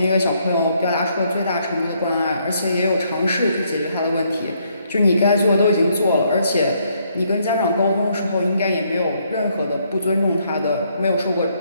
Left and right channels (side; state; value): both; inverted; correlation -0.71